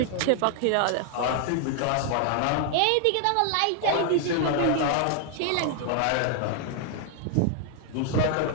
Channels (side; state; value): both; different; correlation 0.00